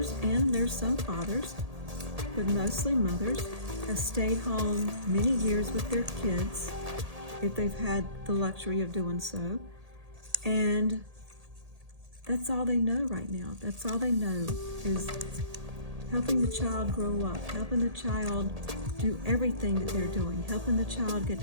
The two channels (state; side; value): late; left; 1.8 ms